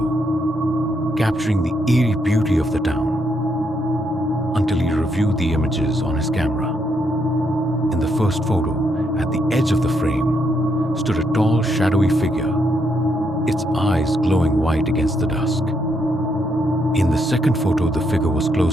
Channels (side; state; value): both; normal; correlation 0.77